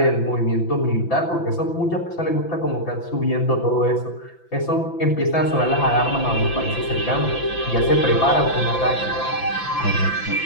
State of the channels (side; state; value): right; late; 5.9 ms